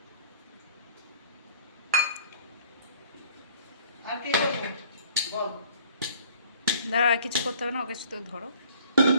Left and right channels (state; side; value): inverted; both; correlation -0.54